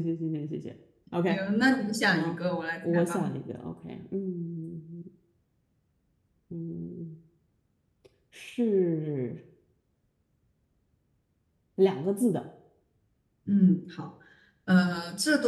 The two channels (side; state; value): both; identical; correlation 1.00